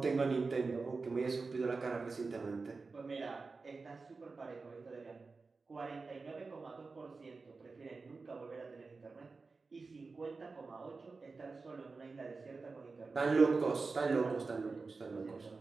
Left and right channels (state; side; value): quieter; left; 4.1 dB